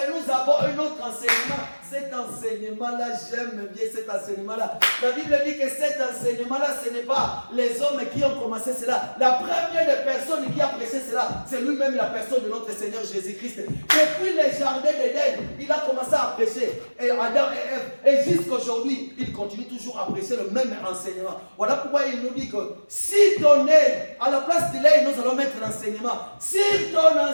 nous avons un autre enseignement. cet enseignement-là, j'aime bien cet enseignement-là. La Bible dit que cet enseignement-là, ce n'est pas les hommes qui ont commencé cela. La première des personnes qui a prêché cela, c'est lui-même la personne de notre Seigneur Jésus-Christ. Depuis le jardin d'Éden, il a commencé à prêcher. Et Adam et Ève, et jusqu'aujourd'hui, il continue toujours à prêcher le même enseignement. Voilà pourquoi il nous dit que si ton aide, à la place de l'aide, nous allons mettre l'enseignement. Si ton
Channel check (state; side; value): inverted; both; correlation -1.00